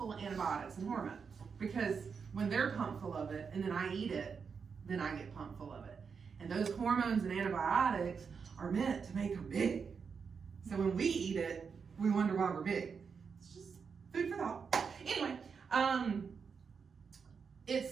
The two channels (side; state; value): left; quieter; 5.9 dB